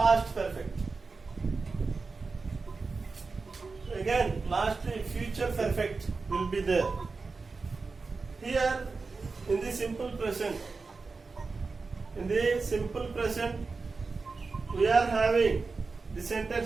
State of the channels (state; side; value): quieter; left; 4.2 dB